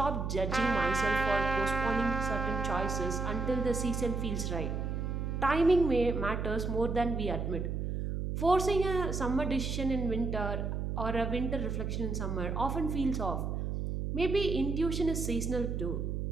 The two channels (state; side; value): noise; right; hum, 2 dB below the sound